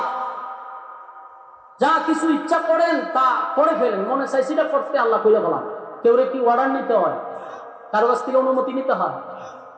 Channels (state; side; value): identical; both; correlation 1.00